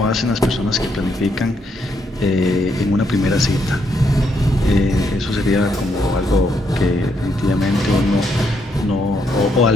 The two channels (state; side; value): normal; both; correlation 0.76